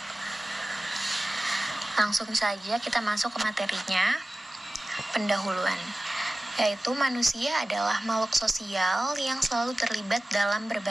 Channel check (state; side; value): normal; both; correlation 0.96